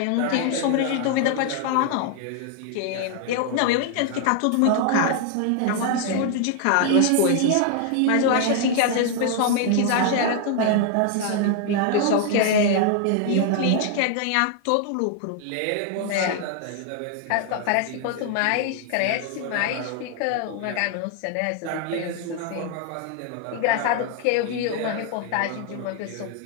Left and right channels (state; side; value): different; both; correlation 0.00